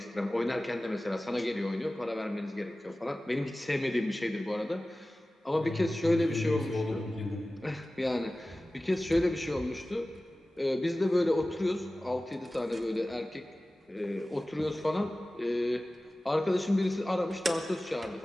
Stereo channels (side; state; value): both; normal; correlation 0.96